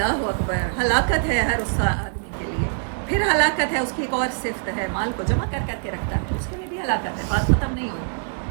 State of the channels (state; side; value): silent; left; 63 dB below the other